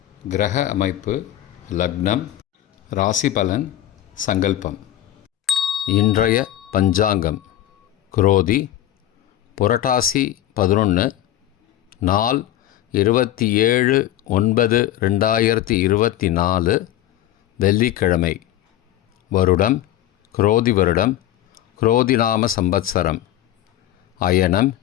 கிரக அமைப்பு, லக்னம், ராசி பலன், சங்கல்பம். இன்றைய பஞ்சாங்கம் குரோதி புரட்டாசி 11, நாள் 27/9/2024, வெள்ளிக்கிழமை. வருடம் குரோதி வருடம், குரோதிநாம சம்பத்சரம். அயனம்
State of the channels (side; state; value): right; quieter; 13.0 dB